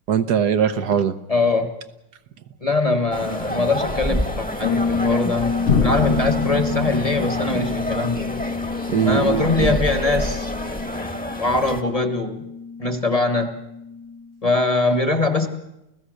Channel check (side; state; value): both; normal; correlation 0.36